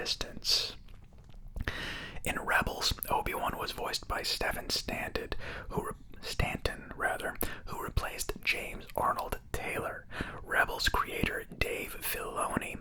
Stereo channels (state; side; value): identical; both; correlation 1.00